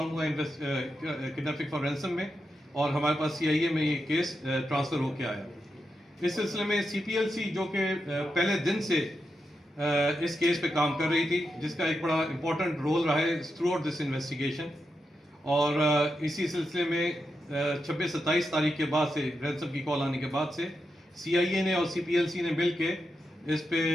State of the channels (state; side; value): normal; both; correlation 0.86